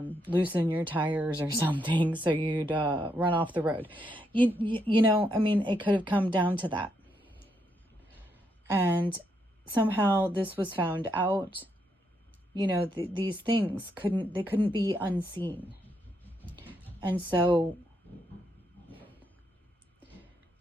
your tires or something so you'd run off the road. I mean, it could have come down to that. And somehow this was found out. These things couldn't be unseen. And so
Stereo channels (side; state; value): both; normal; correlation 0.78